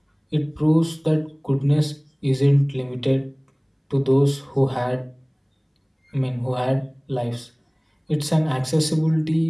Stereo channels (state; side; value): identical; both; correlation 1.00